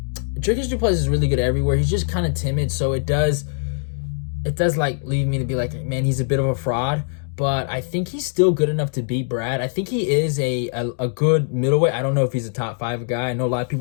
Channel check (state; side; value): silent; right; 56 dB below the other